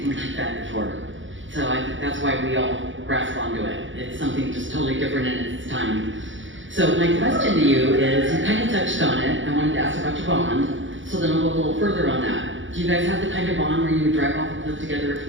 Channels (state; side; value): late; left; 0.56 ms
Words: like that before. So I think that's why we all grasp onto it. It's something just totally different in its time. So my question to you is, you kind of touched on it. I wanted to ask about your bond, so then I'll go a little further on that. Do you guys have the kind of bond where you would drive off a cliff together if